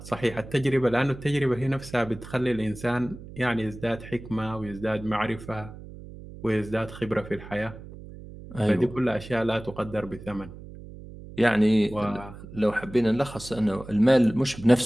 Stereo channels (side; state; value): right; noise; hum, 15 dB below the sound